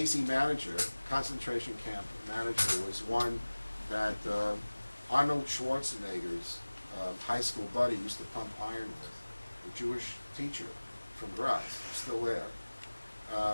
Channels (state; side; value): inverted; both; correlation -1.00